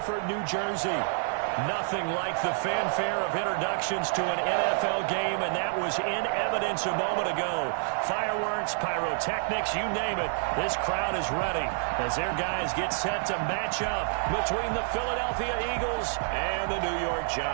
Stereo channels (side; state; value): left; silent; 59 dB below the other